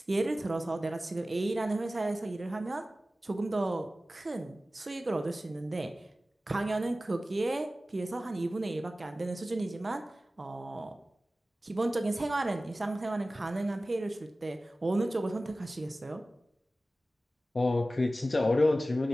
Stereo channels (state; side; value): normal; both; correlation 0.96